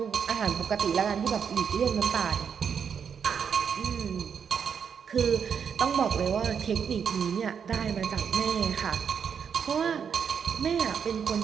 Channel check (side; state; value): left; quieter; 7.1 dB